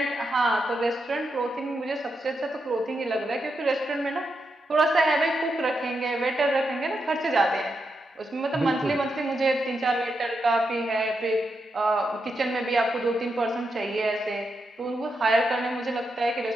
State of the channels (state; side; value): normal; both; correlation 0.85